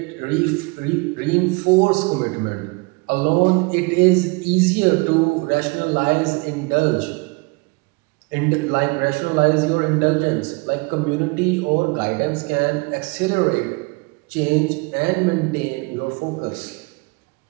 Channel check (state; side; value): quieter; left; 28.2 dB